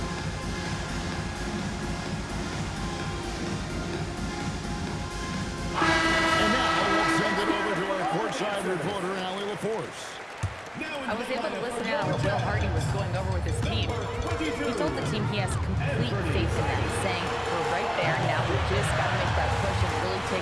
And now we'll send it over to our courtside reporter, Allie LaForce. I was able to listen in on what Will Hardy was going over with his team. He told the team he has complete faith in them, saying, we're right there now, we just got to make that push and really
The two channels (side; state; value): both; identical; correlation 1.00